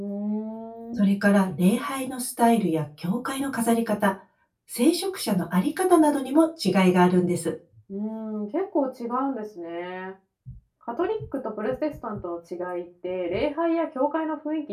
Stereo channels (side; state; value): both; identical; correlation 1.00